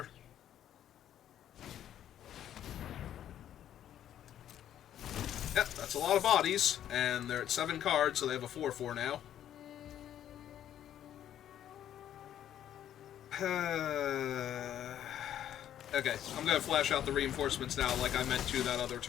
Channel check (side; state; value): right; quieter; 10.9 dB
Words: Yep, that's a lot of bodies, and they're at 7 cards, so they have a 4/4 now. Okay, I'm going to flash out the reinforcements now like I meant to that other